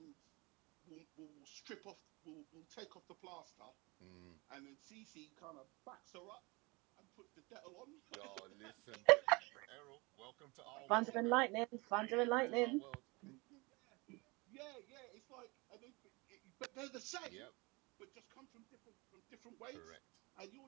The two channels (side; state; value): left; quieter; 26.4 dB